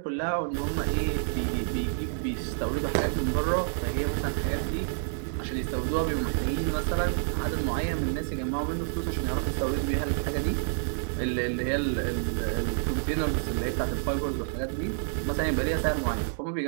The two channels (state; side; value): silent; left; digital silence